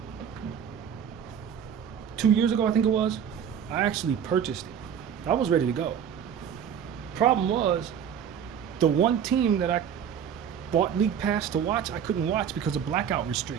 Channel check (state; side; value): quieter; left; 8.4 dB